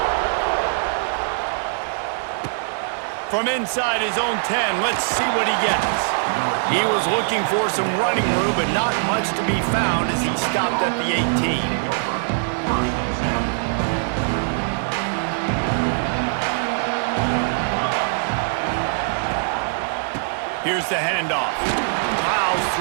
From inside his own 10, let's see what he gets. He was looking for some running room, but not much to be found as he stopped at the 18. Here's the handoff. Plows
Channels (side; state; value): left; silent; digital silence